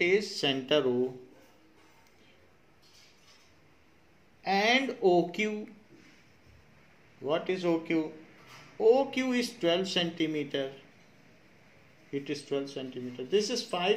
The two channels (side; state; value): both; identical; correlation 1.00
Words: is center O. And and OQ. What is OQ? OQ is 12 centimeter. It is 12 centimeter. This is